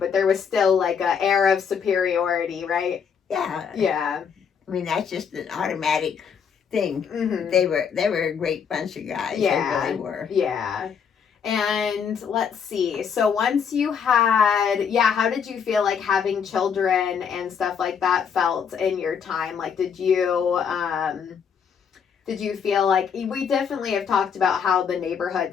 there was still like a air of superiority, right? Yeah. Yeah. I mean, that's just an automatic thing. They were a great bunch of guys. Yeah. They really were. Yeah. And let's see. So once you had, how did you feel like having children and stuff like that felt in your time? Like, did you feel like, we definitely have talked about how the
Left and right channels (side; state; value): right; quieter; 7.0 dB